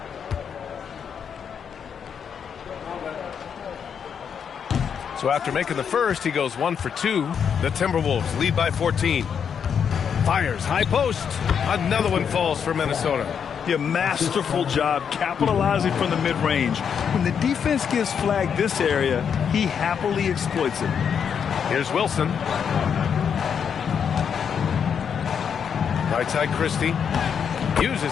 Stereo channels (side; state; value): right; quieter; 7.3 dB